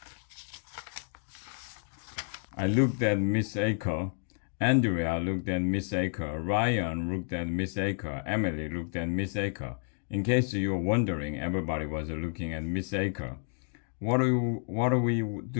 I looked at Miss Aker. Andrea looked at Miss Aker. Ryan looked at Miss Aker. Emily looked at Miss Aker. In case you were wondering, everybody was looking at Miss Aker. What do we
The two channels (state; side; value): silent; right; 57 dB below the other